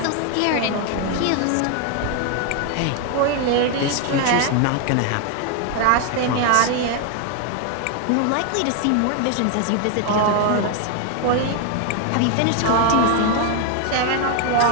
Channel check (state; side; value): different; both; correlation 0.00